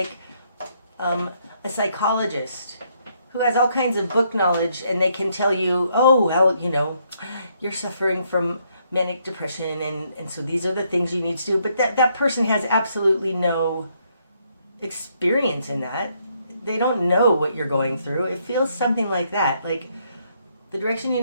a psychologist who has all kinds of book knowledge, and they can tell you, oh, well, you know, you're suffering from manic depression, and so these are the things you need to do. But that person has absolutely no experience in that. They don't know what you're going through. It feels something like that. Like the direction you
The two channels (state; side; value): inverted; both; correlation -0.73